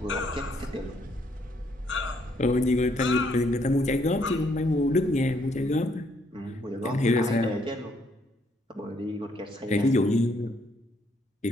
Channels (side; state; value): both; normal; correlation 0.70